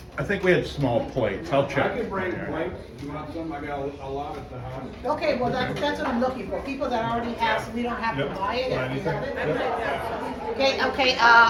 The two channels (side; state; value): both; identical; correlation 1.00